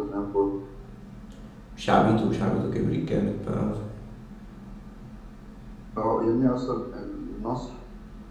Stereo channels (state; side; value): identical; both; correlation 1.00